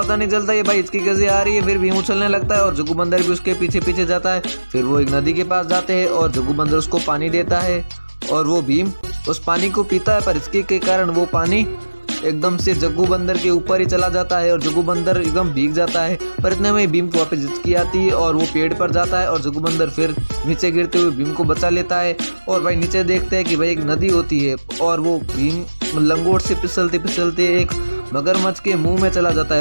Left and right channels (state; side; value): inverted; both; correlation -1.00